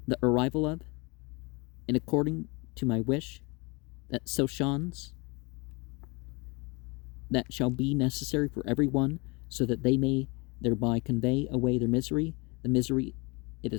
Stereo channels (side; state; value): right; quieter; 28.0 dB